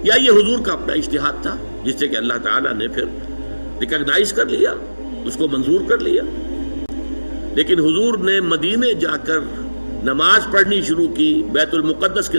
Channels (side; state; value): both; inverted; correlation -1.00